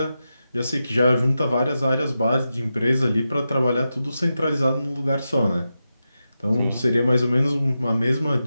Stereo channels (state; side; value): inverted; both; correlation -0.90